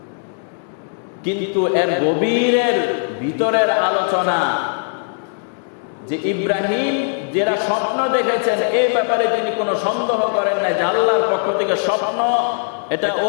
কিন্তু এর গভীরের ভিতরের আলোচনা যে ইব্রাহিম যারা স্বপ্ন দেখেছেন এই ব্যাপারে তিনি কোনো সন্দেহ করেন না যে আল্লাহর পক্ষ থেকে স্বপ্ন, এটা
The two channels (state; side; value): silent; right; digital silence